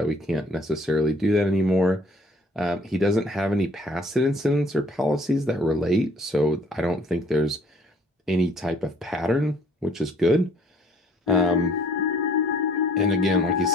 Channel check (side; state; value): both; normal; correlation 0.58